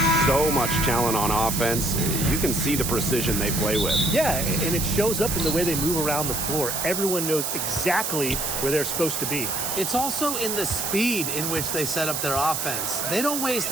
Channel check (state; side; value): noise; right; hiss, 2 dB below the sound